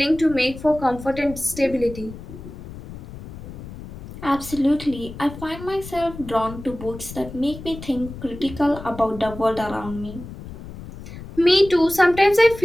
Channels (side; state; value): left; noise; rumble, 13 dB below the sound